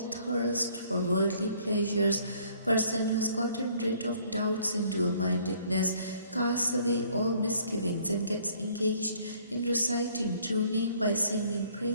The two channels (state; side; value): inverted; both; correlation -0.60